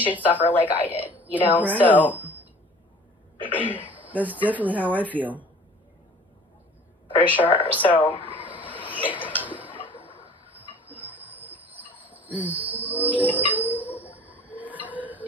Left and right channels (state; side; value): normal; both; correlation 0.47